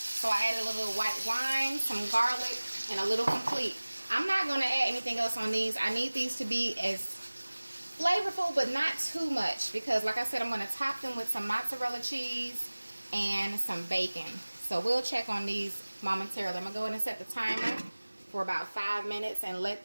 I added a little white wine, some garlic, and a little complete. I'm not going to add anything else on these. I need these to be as flavorful, but not too much. Because like I said, I'm going to top them with some mozzarella cheese and some bacon. So we'll check on these momentarily. I'm going to go ahead and set the timer for about 5 minutes and let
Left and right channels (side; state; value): both; inverted; correlation -1.00